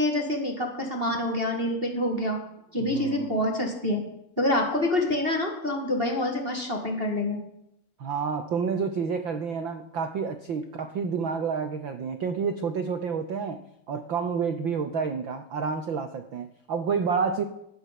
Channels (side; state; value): left; late; 2.8 ms